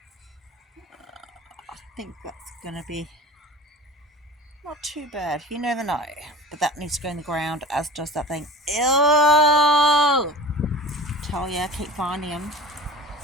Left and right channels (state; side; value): normal; both; correlation 0.37